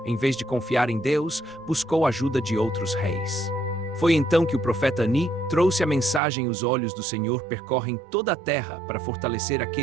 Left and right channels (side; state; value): left; drops out; at 6.2 s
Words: em vez de confiar em Deus, buscou a ajuda de outros reis. Foi então que o profeta Ani trouxe a mensagem: os olhos do Senhor percorrem toda a terra para fortalecer